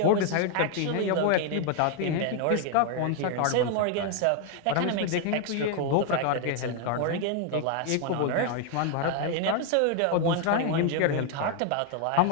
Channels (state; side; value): different; both; correlation 0.00